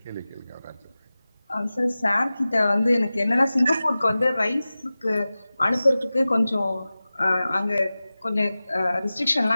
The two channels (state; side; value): inverted; both; correlation -0.96